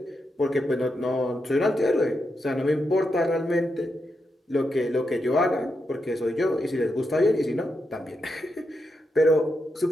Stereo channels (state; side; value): normal; both; correlation 0.85